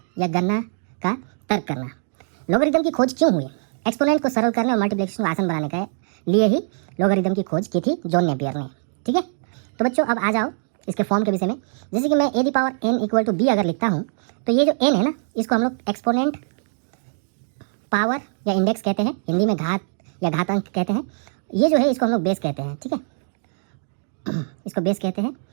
या गणना का तर्क करना। लॉगरिदम की खोज क्यों हुई? एक्सपोनेंट को सरल करने और मल्टीप्लिकेशन को आसान बनाने के लिए ही लॉगरिदम की खोज की थी जॉन नेपियर ने। ठीक है, तो बच्चों अब आ जाओ इसके फॉर्म के विषय में। जैसे कि मैं a the power n equal to b अगर लिखता हूँ तो ये जो n है ना, इसको हम लोग एक्सपोनेंट पावर या इंडेक्स कहते हैं, हिंदी में घात या घातांक कहते हैं। ये जो है इसको हम लोग बेस कहते हैं। ठीक है, इसको बेस कहते हैं।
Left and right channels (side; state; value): left; silent; digital silence